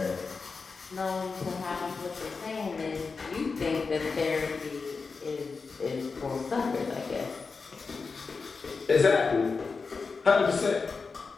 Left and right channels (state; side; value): quieter; right; 4.6 dB